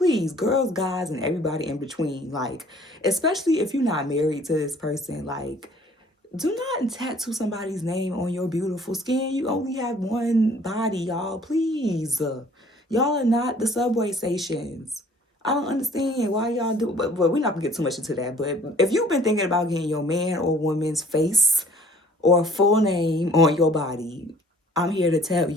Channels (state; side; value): normal; both; correlation 0.55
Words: girls, guys, and everybody in between, like, especially if you're not married to this person, like, do not tattoo somebody's name on your beautiful skin. You only have one body, y'all. Please. Y'all are not the subway stations. I don't understand why y'all do, but we're not gonna get too much into that. But if you've been thinking about getting your man or woman's face or full name on your body, I'm here to tell